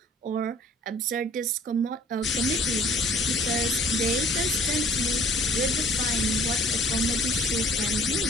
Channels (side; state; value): both; normal; correlation 0.53